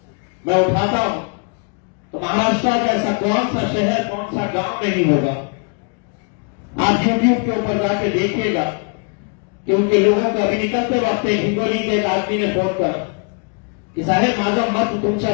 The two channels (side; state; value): right; quieter; 36.5 dB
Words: मैं उठाता हूं, तो महाराष्ट्र का ऐसा कौन सा शहर, कौन सा गांव नहीं होगा। आप यूट्यूब के ऊपर जाके देखिएगा कि उनके लोगों का अभी निकलते वक्त हिंगोली के एक आदमी ने फोन कर की साहेब माझा मत